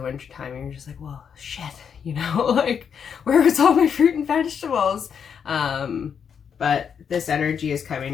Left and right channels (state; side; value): quieter; right; 7.3 dB